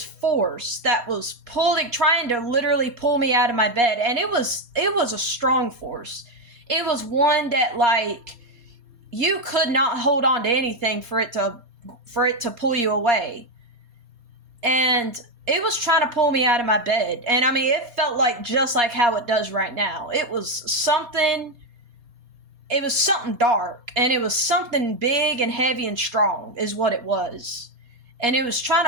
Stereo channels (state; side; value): late; left; 4.2 ms